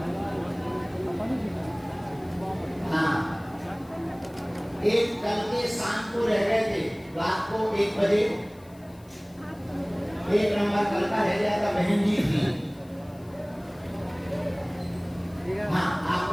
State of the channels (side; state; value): left; noise; hiss, 28 dB below the sound